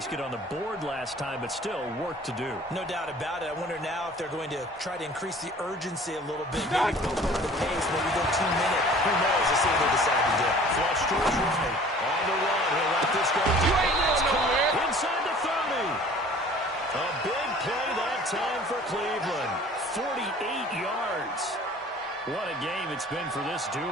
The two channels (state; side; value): normal; both; correlation 0.48